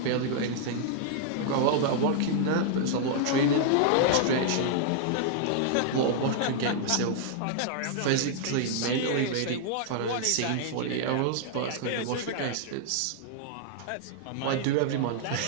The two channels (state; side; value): different; both; correlation -0.01